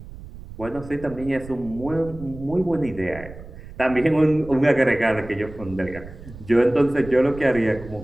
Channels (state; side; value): noise; right; rumble, 15 dB below the sound